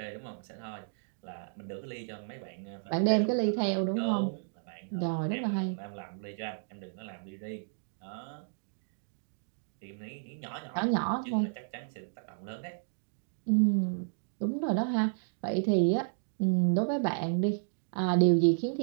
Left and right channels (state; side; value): silent; left; digital silence